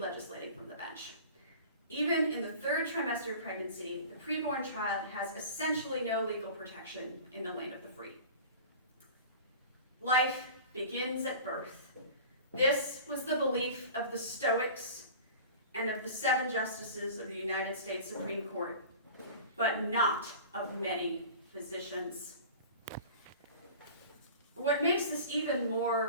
from the bench. Even in the third trimester of pregnancy, the preborn child has essentially no legal protection in the land of the free. Life begins at birth. This was the belief of the Stoics and of the 7 justices of the United States Supreme Court, but not of many physicians. What makes this even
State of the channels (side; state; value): both; inverted; correlation -0.39